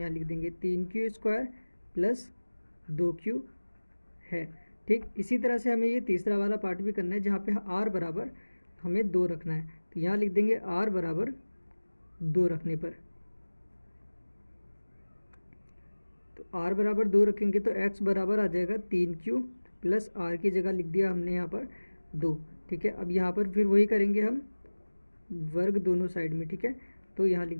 लिख देंगे 3q स्क्वायर प्लस 2q है। ठीक, इसी तरह से हमें ये तीसरा वाला पार्ट भी करना है, जहाँ पे r बराबर हमें 2 रखना है। तो यहाँ लिख देंगे r बराबर 2 रखने पर, तो r बराबर 2 रखेंगे तो x बराबर आ जाएगा 3q प्लस आर की जगह लिख दिया हमने यहाँ पर 2। ठीक है, अब यहाँ पर फिर वही करेंगे हम, वर्ग दोनों साइड में। ठीक है, तो यहाँ लिख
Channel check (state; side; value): inverted; both; correlation -1.00